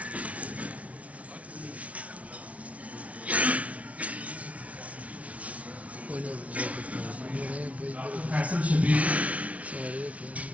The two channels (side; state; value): left; late; 0.066 ms